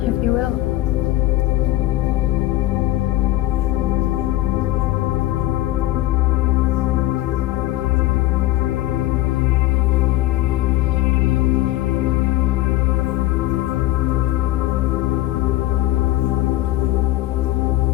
if you will.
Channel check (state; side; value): quieter; right; 16.0 dB